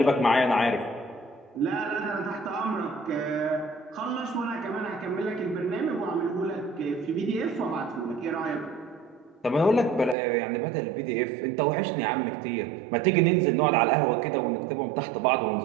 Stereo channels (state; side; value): drops out; left; at 10.2 s